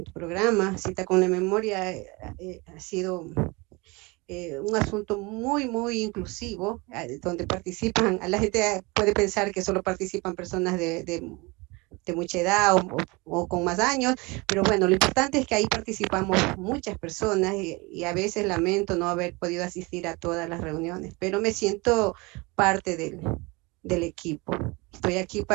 programa. Cita con la Memoria ha sido un asunto muy inclusivo, donde participan, la gente puede pensar que solo participan personas de mucha edad o con más años, pero bueno, lo importante es que ahí participamos muchas personas y a veces lamento no haber podido asistir a todas las reuniones, pero me siento parte del equipo. Estoy aquí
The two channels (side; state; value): left; quieter; 25.9 dB